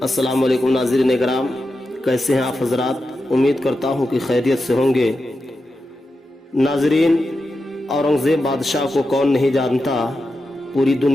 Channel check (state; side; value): normal; both; correlation 0.89